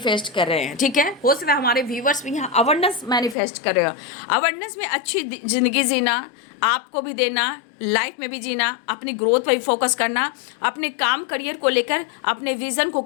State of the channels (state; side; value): drops out; right; at 3.4 s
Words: कर रहे हैं, ठीक है। हो सकता है हमारे व्यूवर्स भी यहाँ अवेयरनेस मैनिफेस्ट कर रहे हो। अवेयरनेस में अच्छी जिंदगी जीना, आपको भी देना, लाइफ में भी जीना, अपनी ग्रोथ पर भी फोकस करना, अपने काम करियर को लेकर अपने विजन को